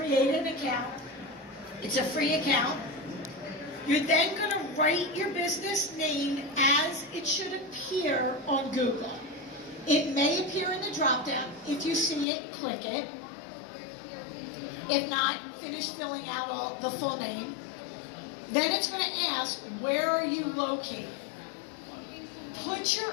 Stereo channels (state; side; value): drops out; right; at 12.2 s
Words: an account. It's a free account. You're then going to write your business name as it should appear on Google. It may appear in the drop-down. If you see it, click it. If not, finish filling out the full name. Then it's going to ask, where are you located? Put your